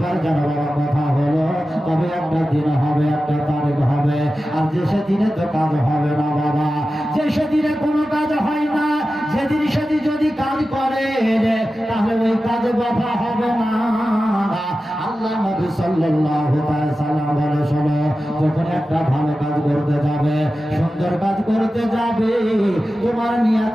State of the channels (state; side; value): normal; both; correlation 0.94